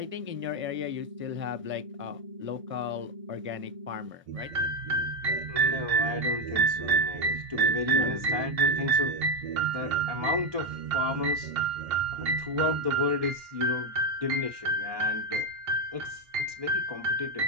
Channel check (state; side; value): late; left; 1.6 ms